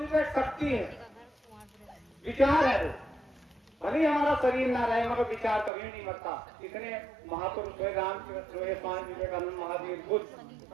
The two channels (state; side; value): drops out; left; at 5.7 s